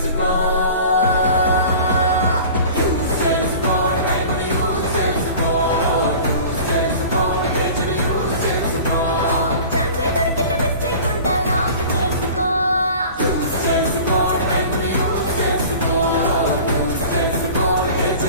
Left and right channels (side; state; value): both; inverted; correlation -0.41